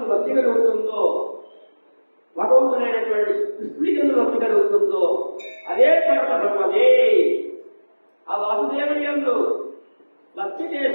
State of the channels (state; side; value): inverted; both; correlation -1.00